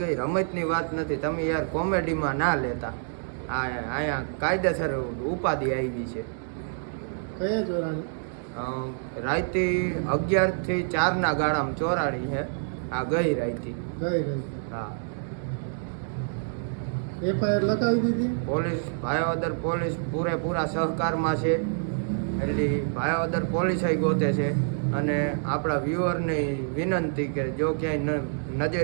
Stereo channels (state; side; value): silent; left; digital silence